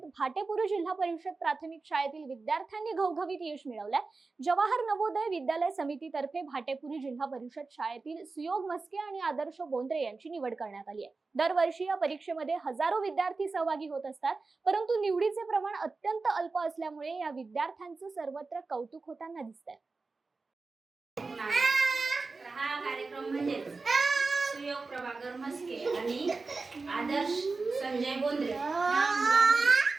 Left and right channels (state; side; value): quieter; left; 4.0 dB